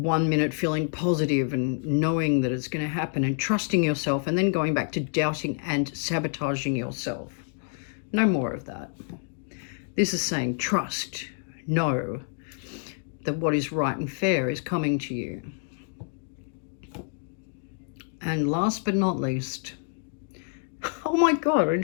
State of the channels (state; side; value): silent; right; 56 dB below the other